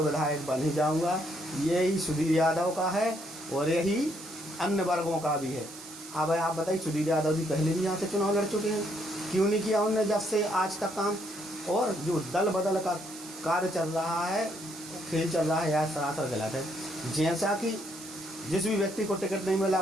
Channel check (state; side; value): noise; right; hiss, 15 dB below the sound